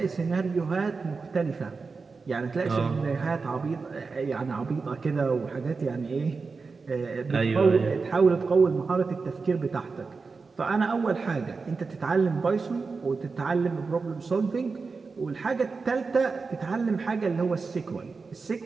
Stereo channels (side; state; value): left; quieter; 4.5 dB